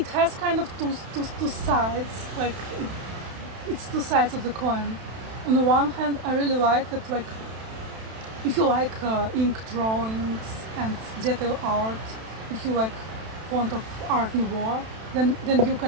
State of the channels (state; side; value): late; left; 32 ms